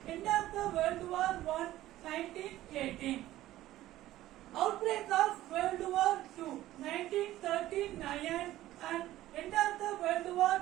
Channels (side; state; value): left; quieter; 14.9 dB